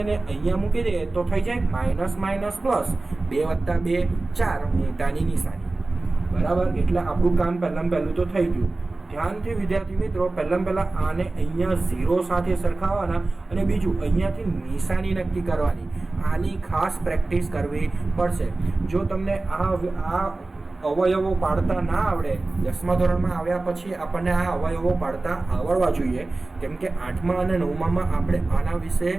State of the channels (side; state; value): left; quieter; 3.2 dB